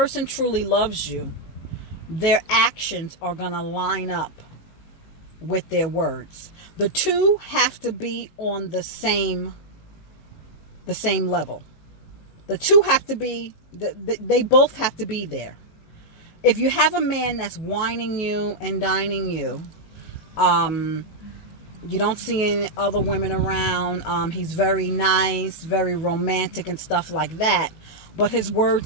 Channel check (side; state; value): right; late; 18 ms